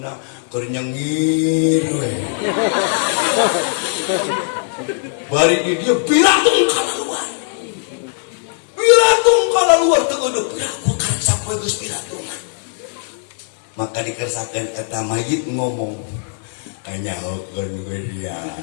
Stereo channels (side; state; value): right; silent; digital silence